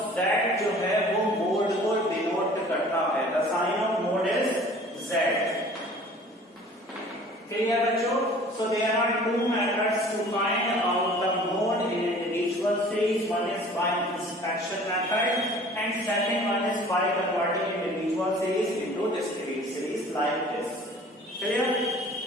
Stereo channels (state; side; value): normal; both; correlation 0.48